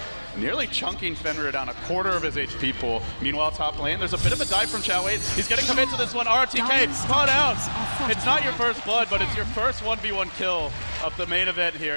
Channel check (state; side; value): inverted; both; correlation -1.00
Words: nearly chunking Fenrir down a quarter of his HP pool. Meanwhile, top lane, there's a bit of a dive from Xiao Wei. He's getting commit to this one. RTK, spot out. It's not your first blood, but it's your first 1v1 kill of the main event here